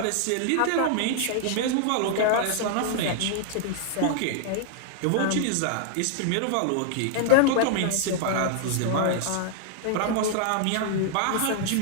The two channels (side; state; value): both; different; correlation 0.00